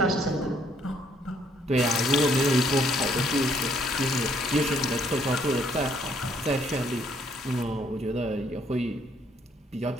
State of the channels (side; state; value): both; normal; correlation 0.67